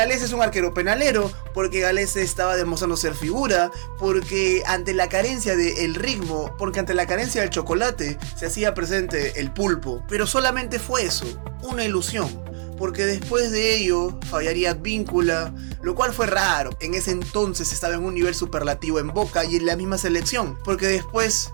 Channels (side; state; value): left; silent; 63 dB below the other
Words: es un arquero penalero, porque Galese estaba demostrando ser figura, porque ante la carencia del ritmo, porque ante la carencia del chocolate, se hacía presente el pulpo. Pero solamente fue eso, una ilusión. Porque después de ello fallaría Advíncula, lo cual fue raro. En ese entonces estaba en un nivel superlativo en Boca y en la misma selección. Porque después